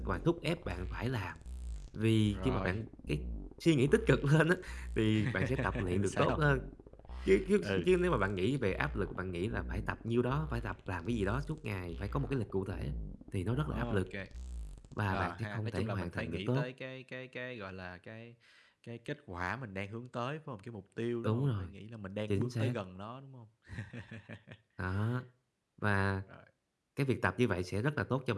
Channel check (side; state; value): both; identical; correlation 1.00